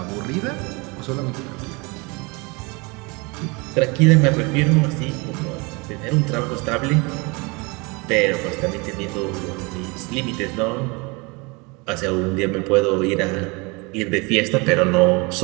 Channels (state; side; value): quieter; left; 27.7 dB